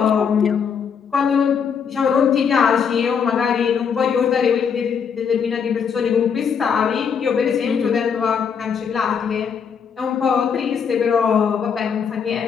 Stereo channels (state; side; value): quieter; right; 6.8 dB